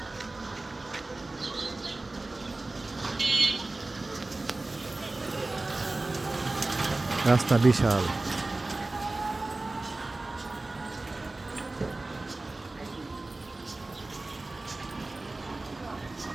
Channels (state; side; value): quieter; left; 3.1 dB